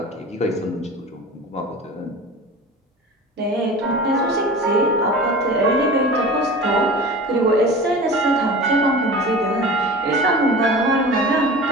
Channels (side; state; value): both; normal; correlation 0.36